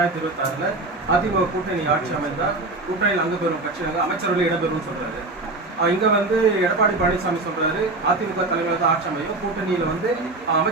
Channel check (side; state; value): left; quieter; 3.2 dB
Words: அதிமுக கூட்டணி ஆட்சி அமைந்தால் கூட்டணியில் அங்க பெறும் கட்சிகள் அமைச்சர்கள் இடம்பெறும் சொல்றாரு. இங்க வந்து எடப்பாடி பழனிசாமி சொல்றாரு, அதிமுக தலைமையில் ஆட்சி அமையும், கூட்டணியில வந்து